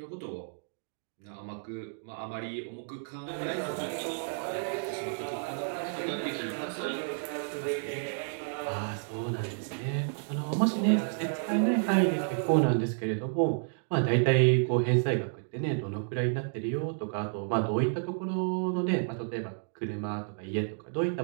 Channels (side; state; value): left; silent; digital silence